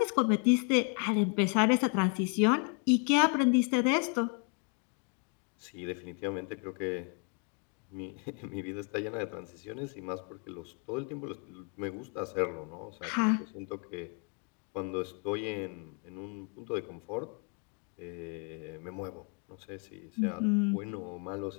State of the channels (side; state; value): right; quieter; 36.4 dB